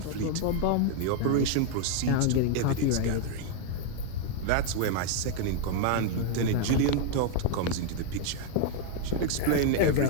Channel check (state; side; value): different; both; correlation 0.00